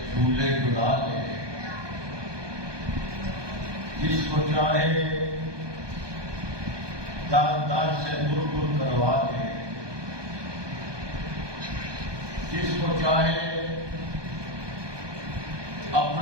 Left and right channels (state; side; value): late; left; 1.2 ms